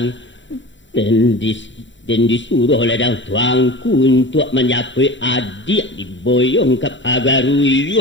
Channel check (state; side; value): late; right; 0.54 ms